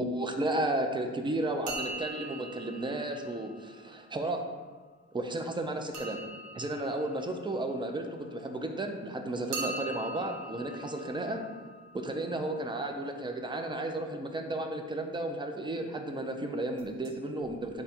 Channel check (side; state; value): both; normal; correlation 0.44